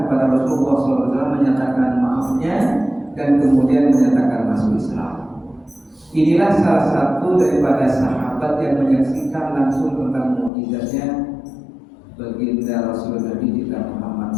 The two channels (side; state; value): right; drops out; at 10.5 s